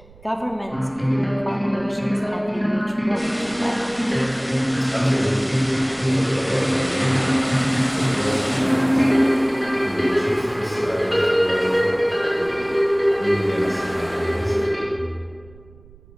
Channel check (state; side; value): noise; right; rumble, 25 dB below the sound